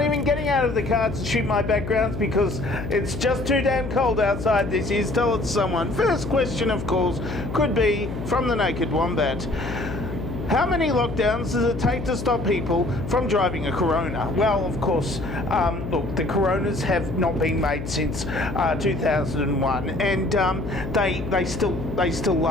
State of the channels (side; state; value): left; noise; hum, 7 dB below the sound